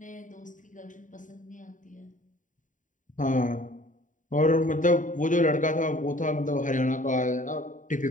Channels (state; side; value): late; right; 0.37 ms